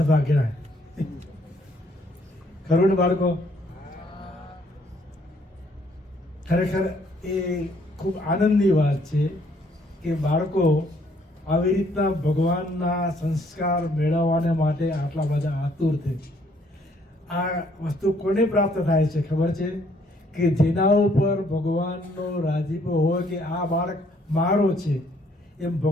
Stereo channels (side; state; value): both; normal; correlation 0.66